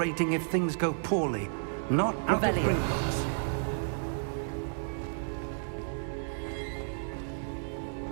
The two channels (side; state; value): left; silent; digital silence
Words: if things go poorly. Not out of Revelio. Gringotts.